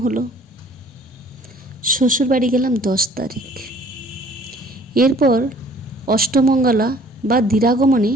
হলো। শ্বশুরবাড়ি গেলাম 10 তারিখ। এরপর অষ্টমঙ্গলা বা দিরাগমনে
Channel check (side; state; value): both; normal; correlation 0.55